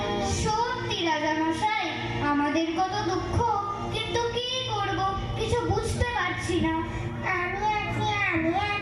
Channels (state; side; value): identical; both; correlation 1.00